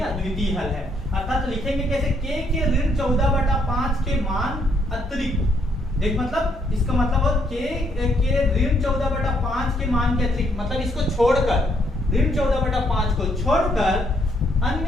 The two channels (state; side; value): normal; both; correlation 0.71